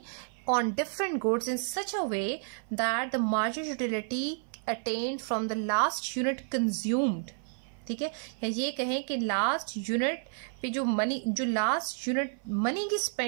on different goods in such a way that the marginal utility attained from the last unit consumed. ठीक है, या ये कहें कि लास्ट यूनिट पे जो लास्ट यूनिट मनी की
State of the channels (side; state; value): left; silent; 56 dB below the other